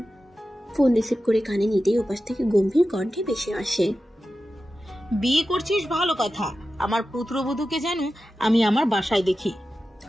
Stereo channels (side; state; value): both; normal; correlation 0.93